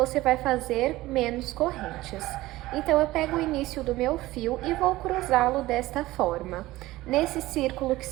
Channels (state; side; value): quieter; left; 17.7 dB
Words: vai fazer menos correntes. Então, eu pego o início do meu fio e vou cruzá-lo desta forma. Nesse círculo que